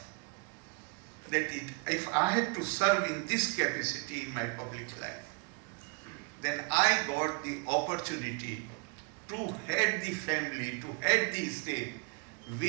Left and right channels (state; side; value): quieter; left; 31.4 dB